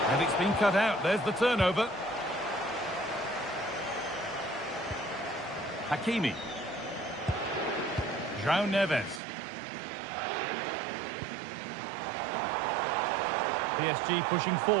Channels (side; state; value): left; drops out; at 9.2 s